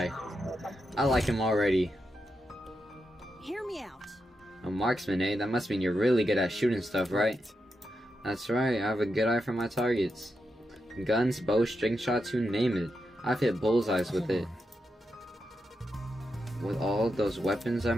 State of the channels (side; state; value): both; normal; correlation 0.86